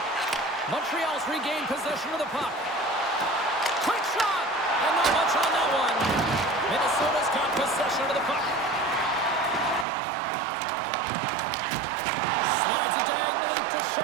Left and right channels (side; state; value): left; drops out; at 9.9 s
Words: Montreal's regained possession of the puck. Quick shot. And not much on that one. Minnesota's got possession of the puck. Slides it diagonally to